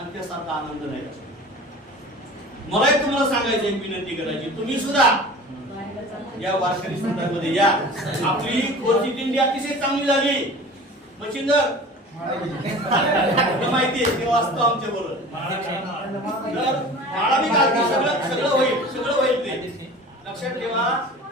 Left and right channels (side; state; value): both; normal; correlation 0.39